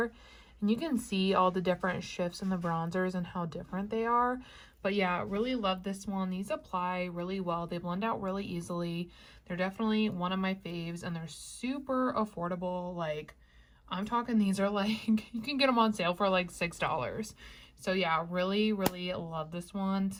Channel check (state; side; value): identical; both; correlation 1.00